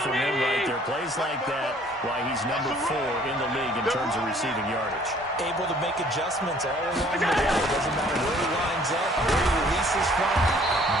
from him right there. Plays like that, why he's number 4 in the league in terms of receiving yardage. Able to make adjustments all along the way. It doesn't matter where he lines up, where he releases from.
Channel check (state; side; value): normal; both; correlation 0.57